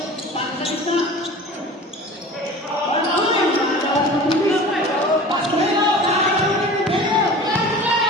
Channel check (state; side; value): normal; both; correlation 0.39